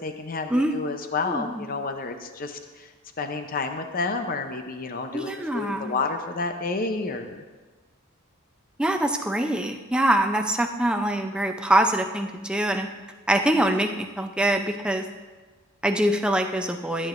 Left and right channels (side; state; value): both; normal; correlation 0.62